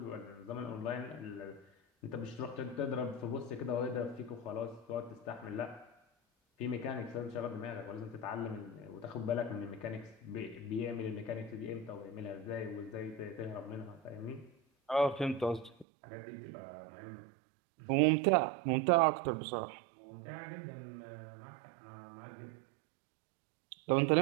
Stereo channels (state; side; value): drops out; left; at 15.9 s